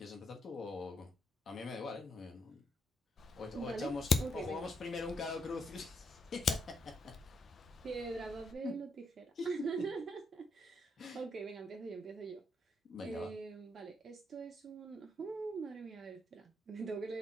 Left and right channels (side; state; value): both; normal; correlation 0.78